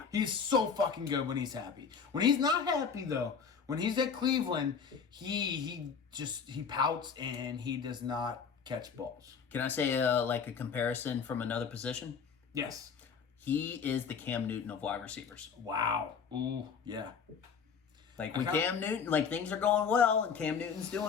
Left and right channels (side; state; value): right; quieter; 6.2 dB